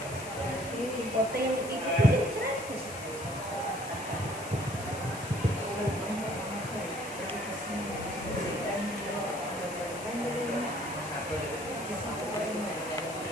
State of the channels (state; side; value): noise; left; hiss, 14 dB below the sound